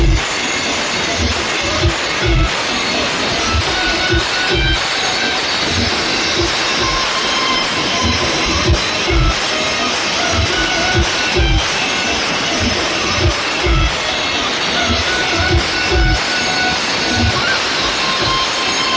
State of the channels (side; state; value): both; identical; correlation 1.00